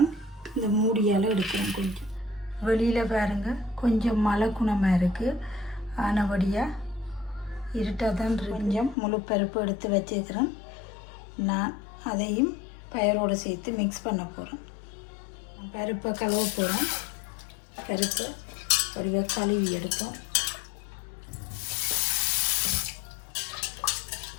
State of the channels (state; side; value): drops out; right; at 9.0 s